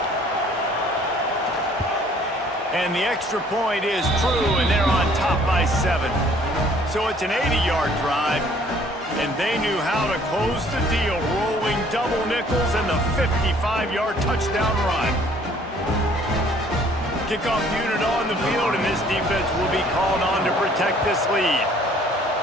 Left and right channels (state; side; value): normal; both; correlation 0.58